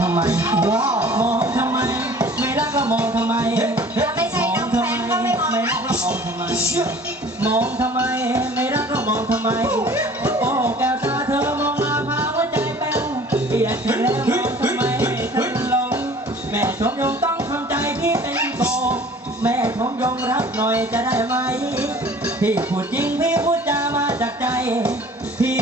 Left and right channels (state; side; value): normal; both; correlation 0.48